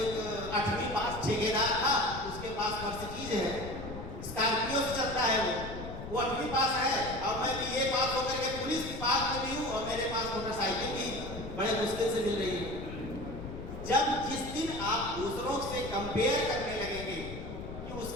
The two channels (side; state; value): left; noise; rumble, 10 dB below the sound